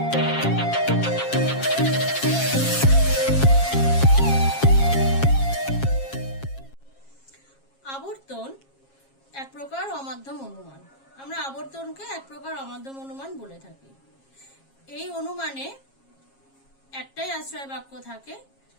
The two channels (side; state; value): right; late; 7.4 ms